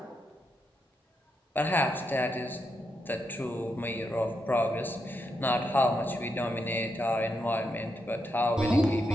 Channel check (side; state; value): both; normal; correlation 0.82